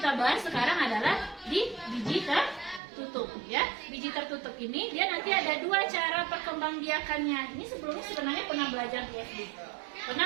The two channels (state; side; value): drops out; left; at 2.8 s